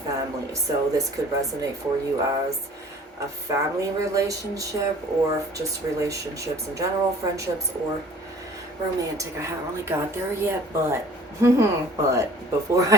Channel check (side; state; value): both; normal; correlation 0.49